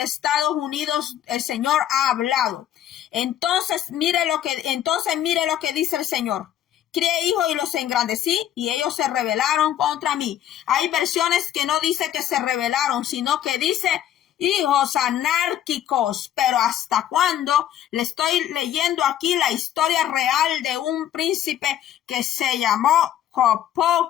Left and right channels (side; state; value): right; quieter; 11.2 dB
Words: Estados Unidos. El Señor ha hablado. Entonces mire lo que dice el Señor. Crié hijos y los engrandecí y ellos se rebelaron contra mí. Hay versiones que no dice que se rebelaron, sino que dice hijos anárquicos. Pero ¿hasta cuándo? Le estoy leyendo aquí la historia real de un príncipe que se llamó